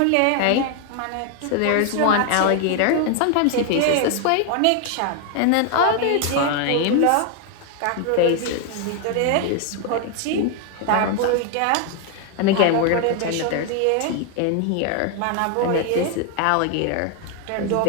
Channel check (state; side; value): different; both; correlation 0.01